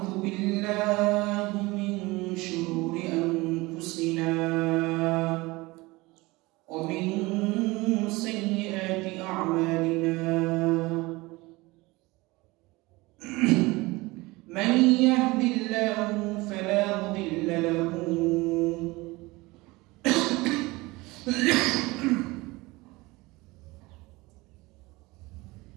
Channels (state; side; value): quieter; left; 22.2 dB